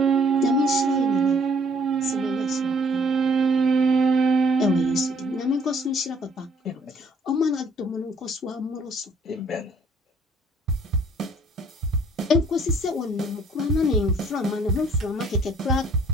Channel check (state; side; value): normal; both; correlation 0.60